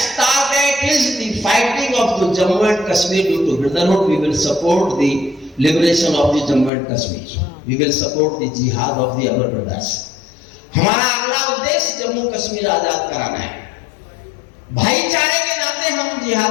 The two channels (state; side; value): drops out; right; at 6.7 s